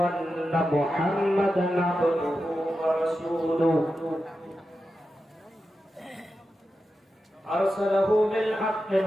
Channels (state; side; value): normal; both; correlation 0.90